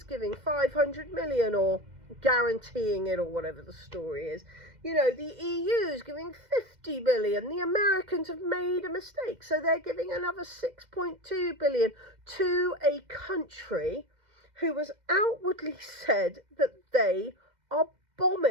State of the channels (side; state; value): left; late; 2.1 ms